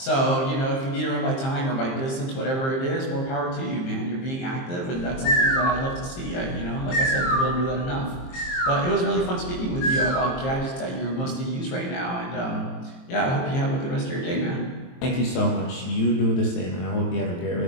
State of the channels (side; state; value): right; late; 23 ms